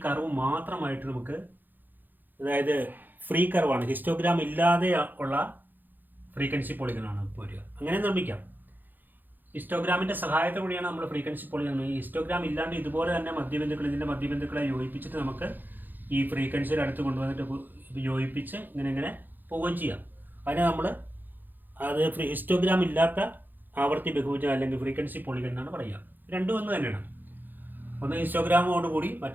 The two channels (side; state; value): left; late; 0.088 ms